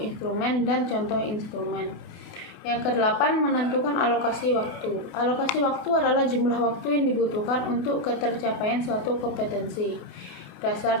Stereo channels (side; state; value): right; late; 28 ms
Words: dan contoh instrumen. Yang ke-8, menentukan alokasi waktu. Alokasi waktu adalah jumlah waktu yang dibutuhkan untuk ketercapaian suatu kompetensi